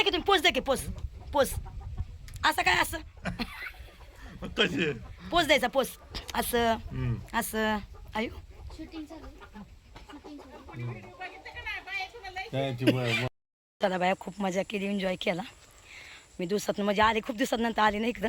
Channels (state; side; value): identical; both; correlation 1.00